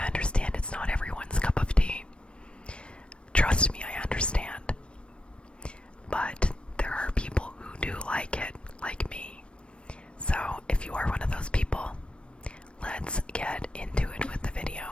understand it's not everyone's cup of tea. Trust me, I understand. But there are people who do like it, like me. So if you are one of those people, let's get into it with the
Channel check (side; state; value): right; late; 0.058 ms